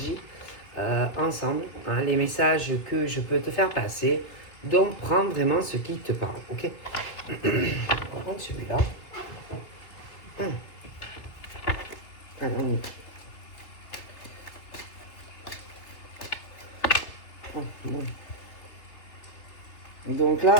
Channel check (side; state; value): right; late; 3.3 ms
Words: ensemble, hein, les messages que je peux te faire passer. Donc prends vraiment ce qui te parle, ok? On va prendre celui-là. Allez, on y va. Oh, bon. Donc là,